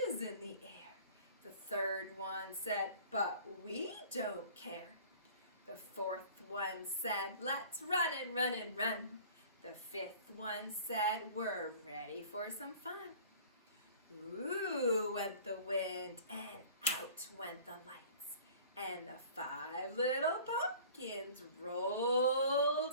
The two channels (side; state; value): both; inverted; correlation -0.47